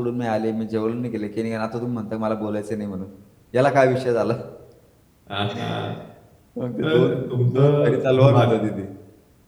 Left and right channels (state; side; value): identical; both; correlation 1.00